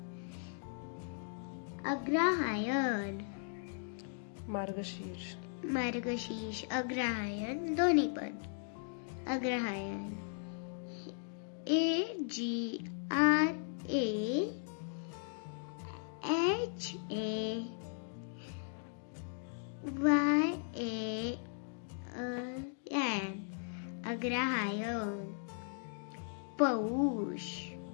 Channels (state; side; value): silent; right; digital silence